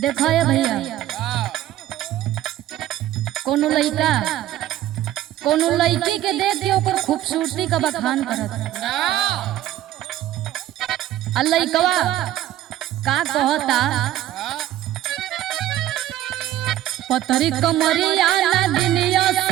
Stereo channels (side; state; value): left; quieter; 13.3 dB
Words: देखा है भैया, कोनो लड़का कोनो लड़की के देख के ओकर खूबसूरती का बखान करत, आ लड़कवा का कहता, पतरी कमरिया नगिनिया